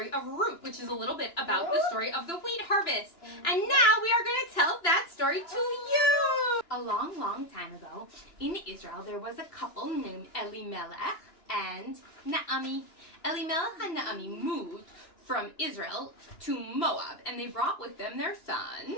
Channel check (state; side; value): late; right; 2.9 ms